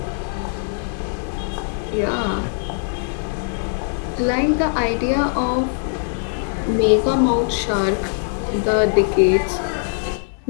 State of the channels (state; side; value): silent; right; 63 dB below the other